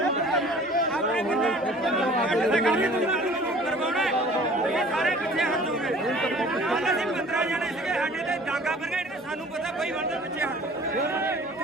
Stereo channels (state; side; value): normal; both; correlation 0.48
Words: ਸਾਰੇ ਪਿੱਛੇ ਹਟ ਜਾਓਗੇ ਕੱਲ ਅਸੀਂ 15 ਜਣੇ ਸੀਗੇ ਸਾਡੇ ਤੇ ਡਾਂਗਾ ਫਰਗਾ ਇਹਨੇ ਸਾਨੂੰ ਪਤਾ ਬਈ ਬੰਦੇ ਪਿੱਛੇ ਹਟ